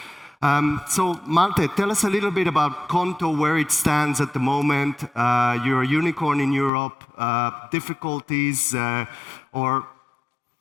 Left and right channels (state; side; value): drops out; right; at 6.7 s